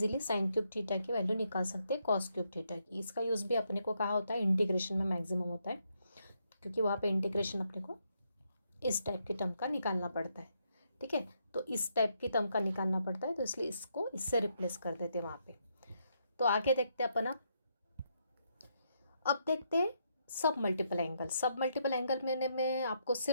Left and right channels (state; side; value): inverted; both; correlation -0.78